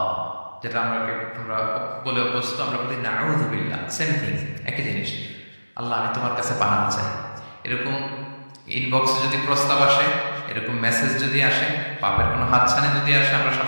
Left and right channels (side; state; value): both; inverted; correlation -1.00